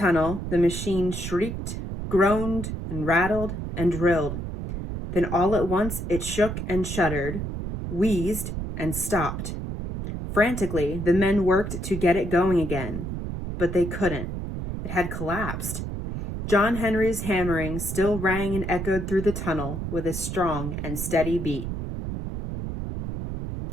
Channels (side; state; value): right; noise; rumble, 5 dB below the sound